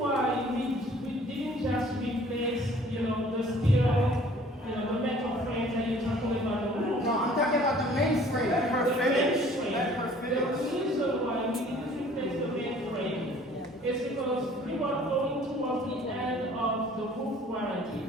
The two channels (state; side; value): normal; both; correlation 0.53